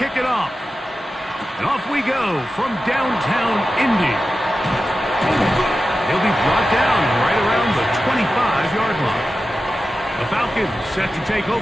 it off. And off we go from downtown Indy. He'll be brought down right around the 25-yard line. The Falcons set to take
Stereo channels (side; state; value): both; normal; correlation 0.93